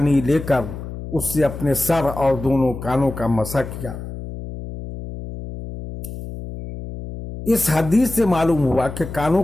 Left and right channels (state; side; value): noise; left; hum, 10 dB below the sound